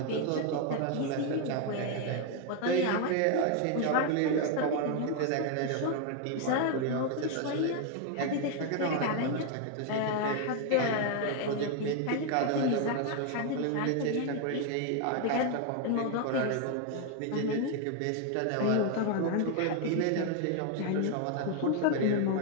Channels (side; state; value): both; different; correlation 0.01